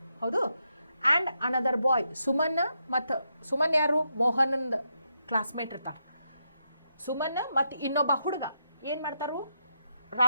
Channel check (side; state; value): both; inverted; correlation -0.82